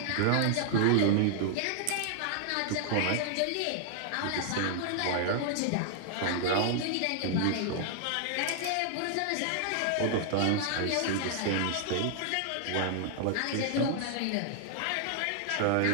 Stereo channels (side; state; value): both; different; correlation 0.00